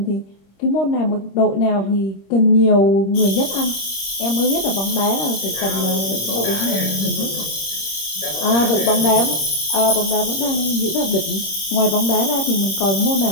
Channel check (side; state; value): right; late; 26 ms